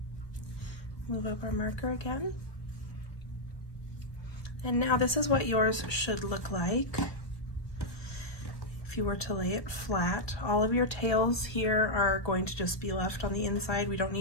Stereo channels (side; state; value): right; late; 1.3 ms